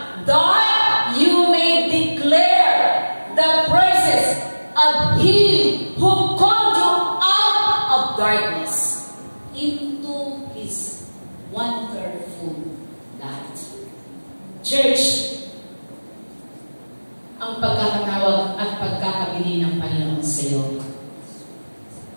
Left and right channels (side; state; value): both; inverted; correlation -1.00